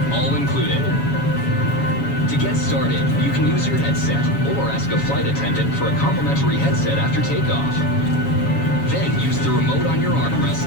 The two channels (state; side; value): late; right; 7.2 ms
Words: all included. To get started, you can use your headset or ask a flight attendant for a complimentary headset after takeoff. Then use the remote on your